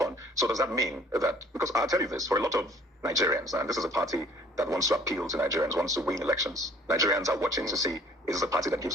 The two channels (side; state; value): both; normal; correlation 0.55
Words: So does that mean that, because I'll tell you this, for a lot of Nigerians, and this is a party that wants to appeal to Nigerians, wants to win elections. Nigerians are watching to see, is this a party that